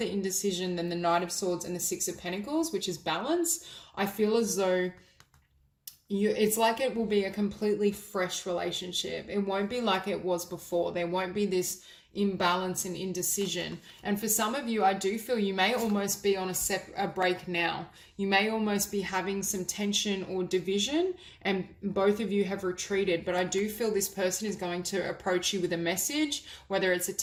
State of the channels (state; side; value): identical; both; correlation 1.00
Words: indecision, then the Knight of Swords and the Six of Pentacles, which is balance, I feel as though it's like it will be a completely fresh relationship. It won't be like it was before. There won't be this imbalance and indecision. And for some of you, I do feel you may almost be on a break now. You may almost be having some tension or division, and both of you have retreated. But I do feel this person is going to approach you with a message, whether it's a